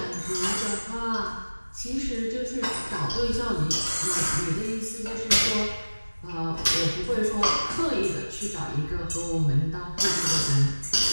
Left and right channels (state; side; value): inverted; both; correlation -1.00